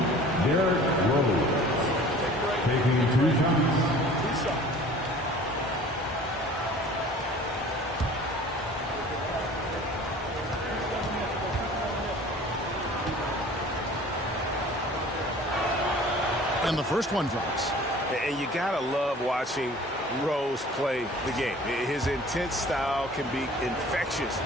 Derrick Rose, taking 2 shots. And the first one drops. And you got to love watching Rose play the game. His intense style can be infectious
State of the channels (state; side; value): normal; both; correlation 0.47